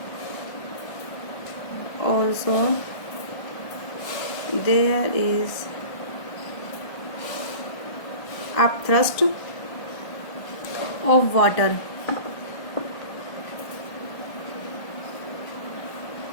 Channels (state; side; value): late; right; 1.2 ms